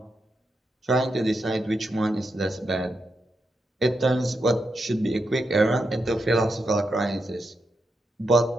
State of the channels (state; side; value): normal; both; correlation 0.85